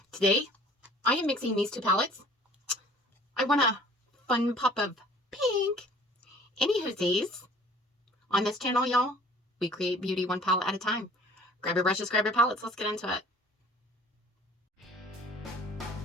today I am mixing these two palettes. I want a fun pop of pink. Anywhoosies, on this channel, y'all, we create beauty one palette at a time. Grab your brushes, grab your palettes, let's get into it.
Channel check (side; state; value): both; normal; correlation 0.51